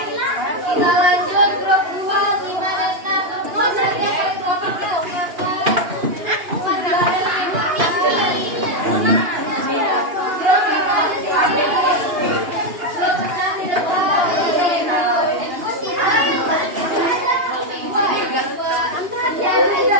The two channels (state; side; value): late; left; 2.8 ms